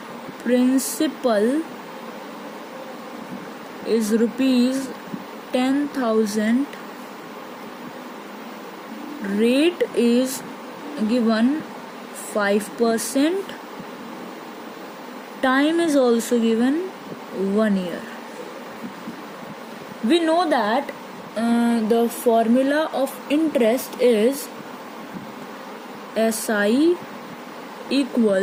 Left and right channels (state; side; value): identical; both; correlation 1.00